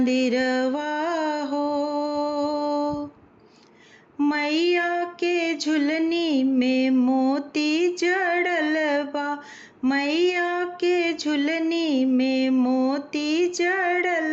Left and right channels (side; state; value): both; identical; correlation 1.00